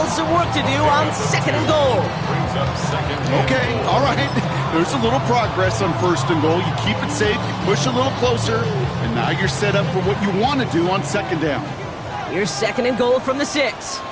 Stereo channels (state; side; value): identical; both; correlation 1.00